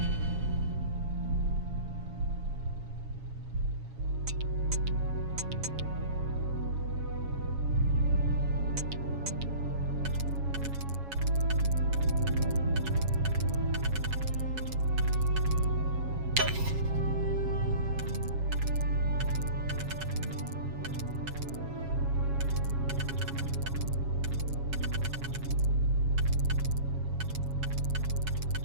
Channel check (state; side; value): late; left; 7.3 ms